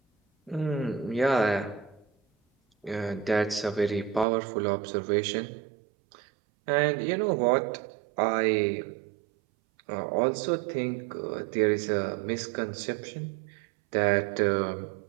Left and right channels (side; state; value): left; drops out; at 4.2 s